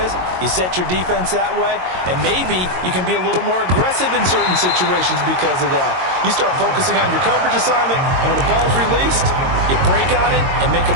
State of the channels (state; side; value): late; left; 22 ms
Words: is. You set your defense that way, and maybe you can be a little more aggressive in certain situations because of that. You start focusing on your coverage assignment, and when the ball's released, you break on it and make a